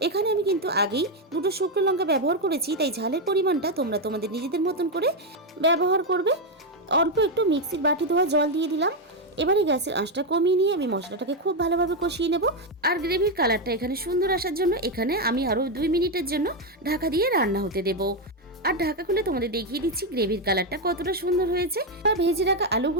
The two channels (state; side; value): normal; both; correlation 0.05